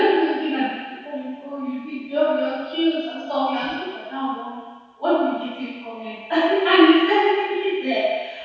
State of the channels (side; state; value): both; identical; correlation 1.00